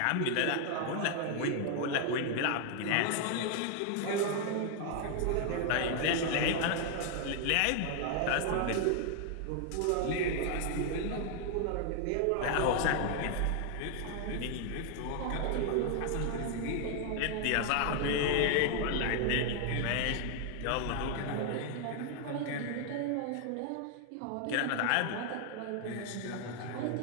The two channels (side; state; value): both; different; correlation 0.00